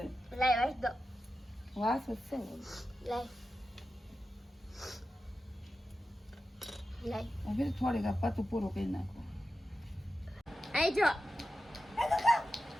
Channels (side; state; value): both; normal; correlation 0.92